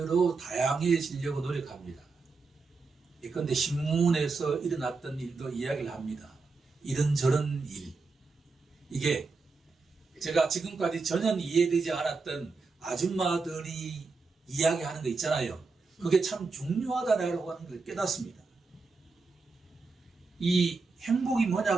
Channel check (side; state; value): left; quieter; 4.2 dB